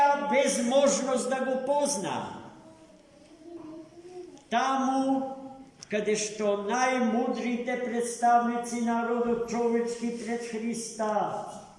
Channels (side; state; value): both; identical; correlation 1.00